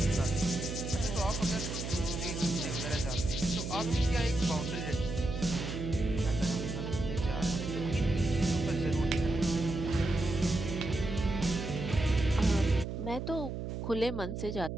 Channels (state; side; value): noise; right; hum, 5 dB below the sound